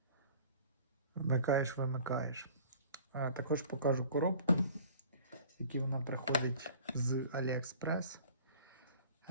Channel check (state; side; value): inverted; both; correlation -0.47